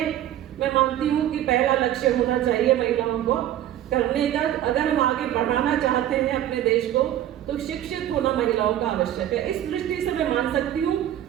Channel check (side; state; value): left; quieter; 12.0 dB